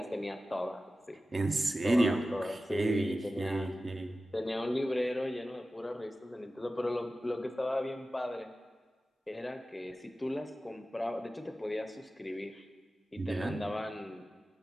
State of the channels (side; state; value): both; normal; correlation 0.95